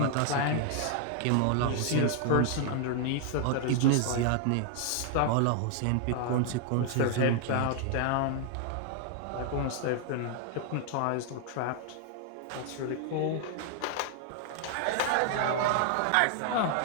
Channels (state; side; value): different; both; correlation 0.00